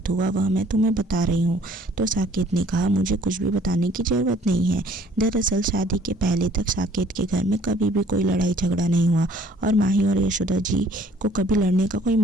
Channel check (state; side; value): normal; both; correlation 0.57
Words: हुआ वह मैं तुम्हें बता रही हूँ। तो साकेत ने कहा मुझे कुछ भी बताने की ज़रूरत नहीं है। दरअसल शादी के पहले तक साकेत के घर में कभी भी कोई लड़ाई झगड़ा नहीं हुआ और माही और यशोदा जी को कभी लड़ने का कोई